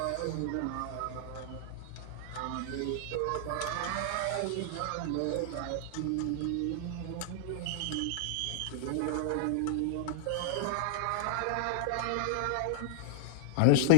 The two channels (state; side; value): different; both; correlation -0.02